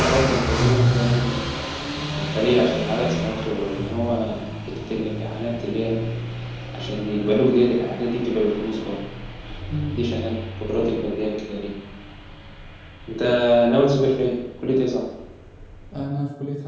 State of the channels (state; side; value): identical; both; correlation 1.00